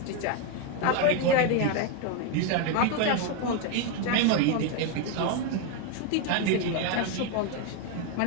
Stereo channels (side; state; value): both; different; correlation 0.01